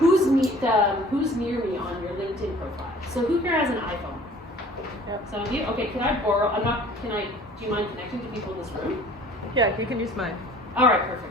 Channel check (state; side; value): normal; both; correlation 0.50